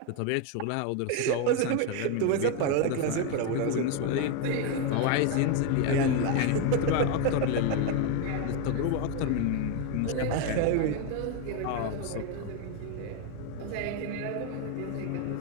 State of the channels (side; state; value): both; different; correlation 0.02